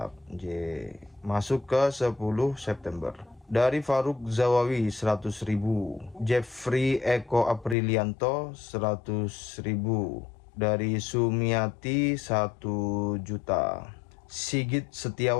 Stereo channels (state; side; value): drops out; right; at 7.8 s